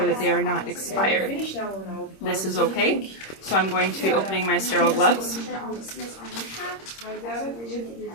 that they are not expired. This is okay, so I'm going to be opening my sterile gloves.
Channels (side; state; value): right; late; 26 ms